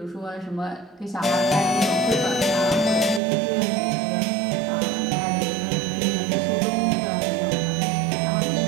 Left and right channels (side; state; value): left; drops out; at 3.2 s